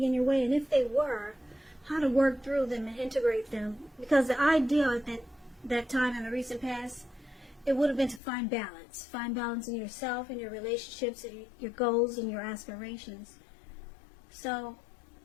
in your way, and if they were, how to work through them and integrate them. Because the ideal at that time in the recent past, it would have been to find balance. Find balance in yourself and your relationships and your goals and your aspirations. So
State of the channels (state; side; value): drops out; right; at 8.2 s